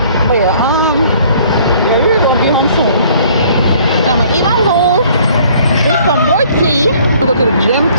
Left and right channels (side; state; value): both; inverted; correlation -0.57